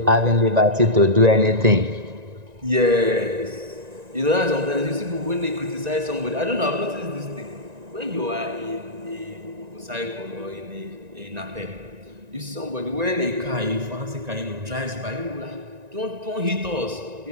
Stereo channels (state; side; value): late; left; 1.9 ms